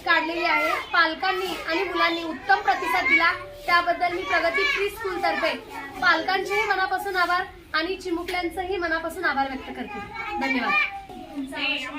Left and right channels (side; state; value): both; identical; correlation 1.00